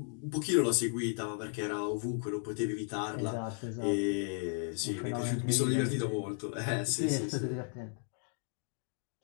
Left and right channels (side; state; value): right; silent; 55 dB below the other